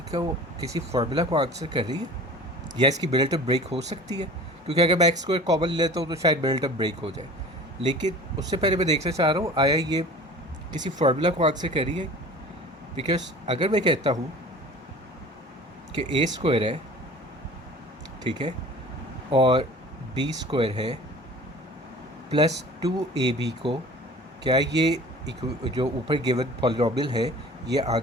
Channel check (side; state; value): both; normal; correlation 0.42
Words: किसी फार्मूला को आंसर कर रही है या इसकी मिडल टर्म ब्रेक हो सकती है, क्योंकि अगर मैं एक्स स्क्वायर कॉमन लेता हूँ तो शायद मिडल टर्म ब्रेक हो जाए। लेकिन उससे पहले मैं देखना चाह रहा हूँ आया ये किसी फार्मूला को आंसर कर रही है। बिकॉज अगर मैं कहता हूँ कि ए स्क्वायर है, ठीक है, और बी स्क्वायर है प्लस 2ab को, क्या ये जो ऊपर गिवन पॉलिनोमियल है ये